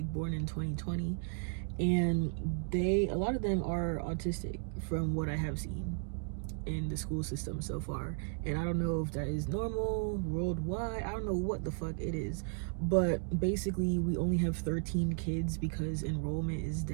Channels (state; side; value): silent; left; 55 dB below the other